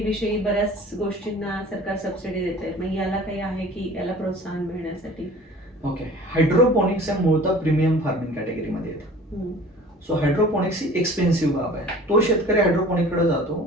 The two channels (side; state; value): both; normal; correlation 0.45